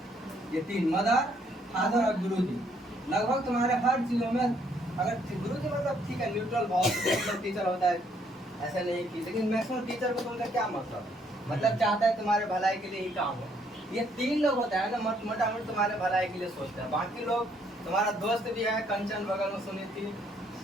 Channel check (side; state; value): both; normal; correlation 0.68